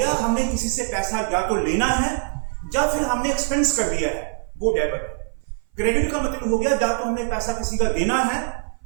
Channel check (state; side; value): silent; left; 58 dB below the other